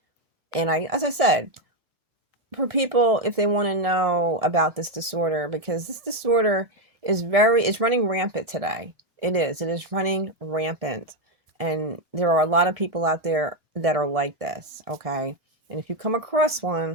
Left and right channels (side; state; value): left; late; 1.6 ms